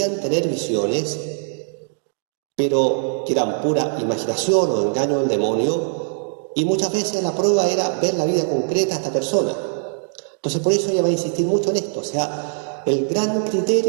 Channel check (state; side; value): silent; left; digital silence